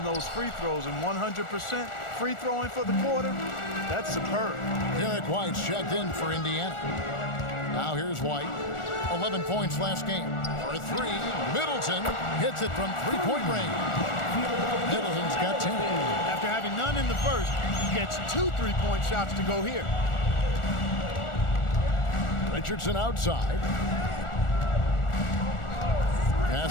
those free throws, and 100% free throwing for the quarter, that's superb. Derek White's checked in for Indiana. Now here's White. 11 points last game. For 3, Middleton hits it from 3-point range. Middleton's got 10. After having none in the first, he gets 2 3-point shots to go here. Richardson outside.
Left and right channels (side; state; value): right; late; 1.4 ms